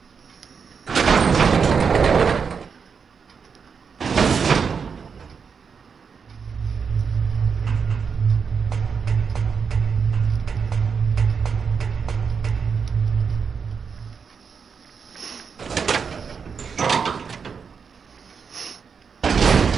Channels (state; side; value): quieter; left; 6.0 dB